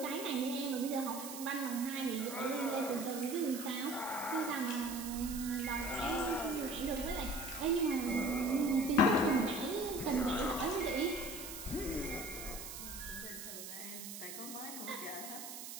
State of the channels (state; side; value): noise; right; hiss, 9 dB below the sound